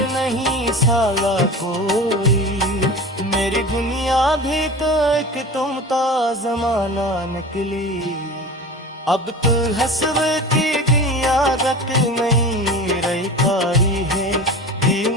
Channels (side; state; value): both; normal; correlation 0.34